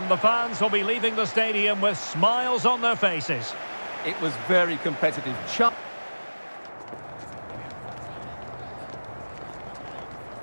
the fans will be leaving the stadium with smiles on their faces. It was very competitive.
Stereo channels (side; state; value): both; inverted; correlation -1.00